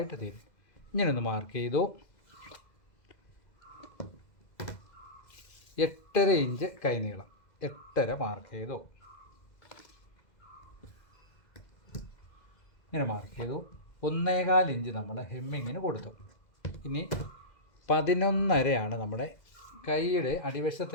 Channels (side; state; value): right; late; 2.0 ms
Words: തീരും. ഇങ്ങനൊന്ന് മാർക്ക് ചെയ്തു. 8.5 ഇഞ്ച് കൈനീളം 8.5 മാർക്ക് ചെയ്തു. ഇങ്ങനെ മാർക്ക് ചെയ്തു. 1.25 ഇഞ്ച് നമ്മൾ ഹെമ്മിങ്ങിന് കൊടുത്തു. ഇനി 11.5 നമ്മുടെ കൈയുടെ